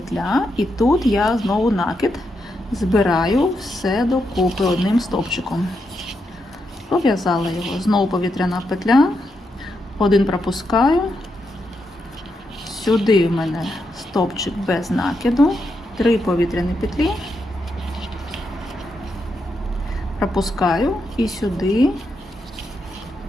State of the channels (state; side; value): normal; both; correlation 0.83